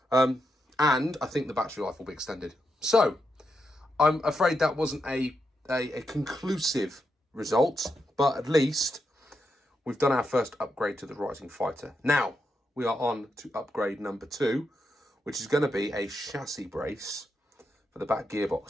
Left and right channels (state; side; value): normal; both; correlation 0.84